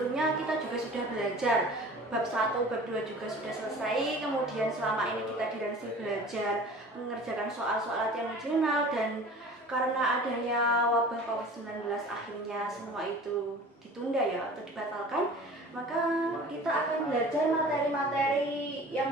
kita juga sudah belajar bab 1, bab 2 juga sudah selesai. Kemudian selama ini kita dilansih belajar mengerjakan soal-soal latihan regional, dan karena adanya wabah COVID-19 akhirnya semua itu ditunda ya atau dibatalkan, maka kita akan belajar materi-materi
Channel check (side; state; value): both; normal; correlation 0.42